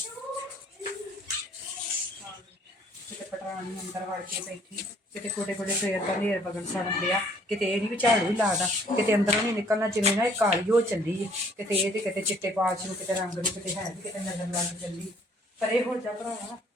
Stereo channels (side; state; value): both; normal; correlation 0.60